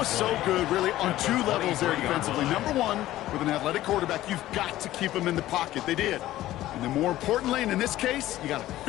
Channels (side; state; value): right; quieter; 14.9 dB